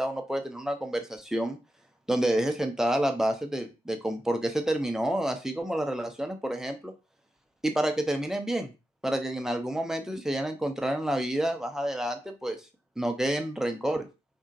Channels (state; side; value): normal; both; correlation 0.91